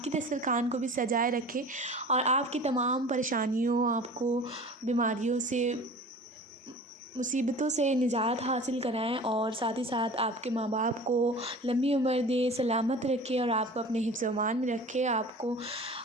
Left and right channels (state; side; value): normal; both; correlation 0.40